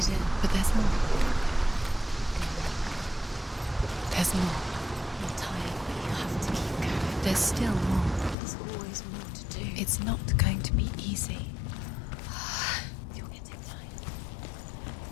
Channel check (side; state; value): right; drops out; at 8.3 s